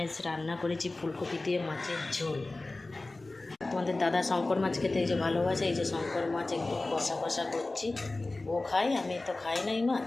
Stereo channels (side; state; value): right; quieter; 3.1 dB